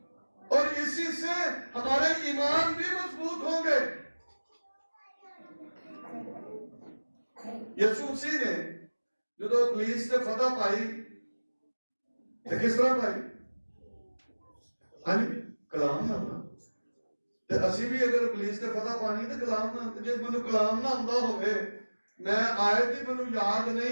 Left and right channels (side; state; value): both; inverted; correlation -1.00